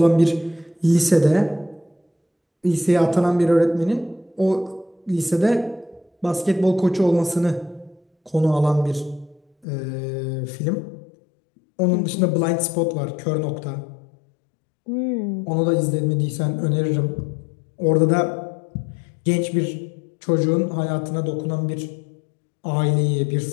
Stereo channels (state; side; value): drops out; right; at 9.7 s